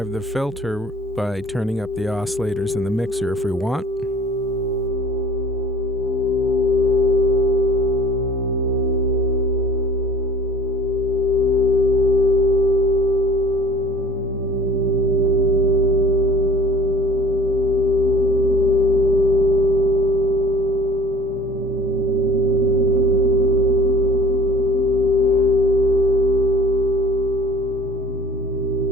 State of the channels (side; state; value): both; normal; correlation 0.48